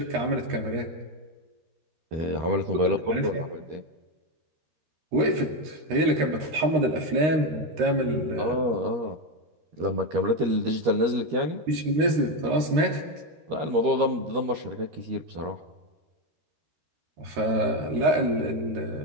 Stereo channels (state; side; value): late; left; 13 ms